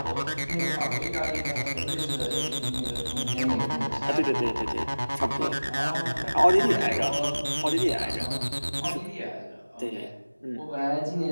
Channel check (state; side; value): inverted; both; correlation -1.00